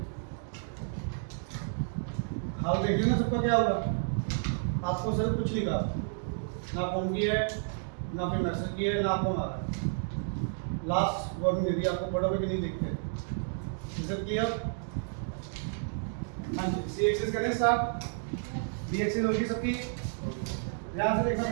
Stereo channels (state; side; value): silent; left; digital silence